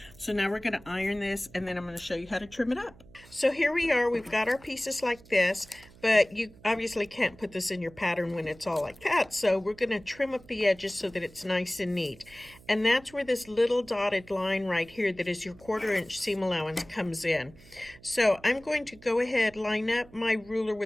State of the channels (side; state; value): right; noise; hum, 23 dB below the sound